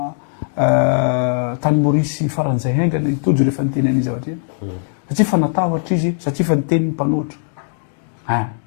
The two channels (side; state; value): right; silent; digital silence